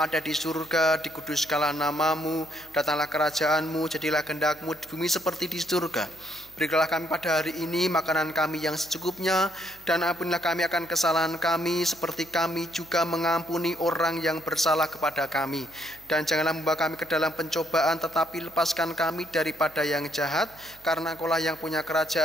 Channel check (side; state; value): right; noise; hum, 25 dB below the sound